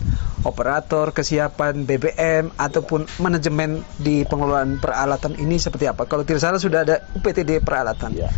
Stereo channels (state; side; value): silent; right; digital silence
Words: operator, kesiapan BBM ataupun manajemen di pengelolaan peralatan ini seperti apa? Kalau tidak salah sudah ada UPTD peralatan.